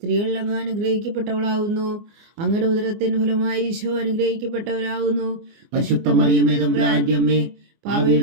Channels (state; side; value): late; left; 24 ms